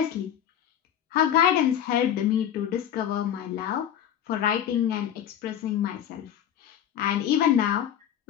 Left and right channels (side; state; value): right; quieter; 10.0 dB